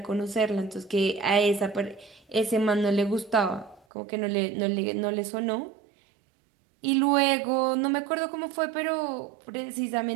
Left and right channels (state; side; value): drops out; left; at 3.8 s